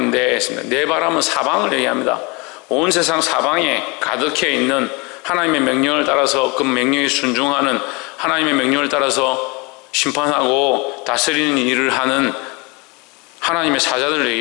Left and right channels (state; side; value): quieter; right; 27.9 dB